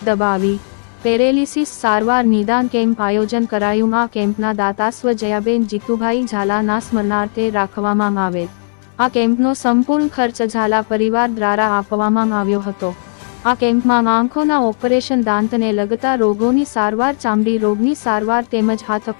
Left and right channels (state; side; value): silent; right; 66 dB below the other